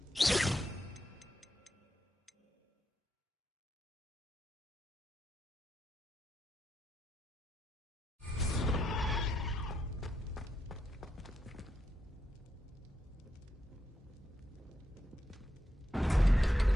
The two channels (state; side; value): normal; both; correlation 0.83